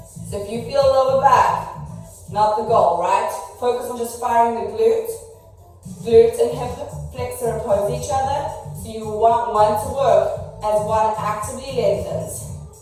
So if you feel lower back, not the goal, right? Focus on just firing the glute. Glute and hip flexor oppose each other. So you want one to work as one actively lengthens.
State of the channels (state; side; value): identical; both; correlation 1.00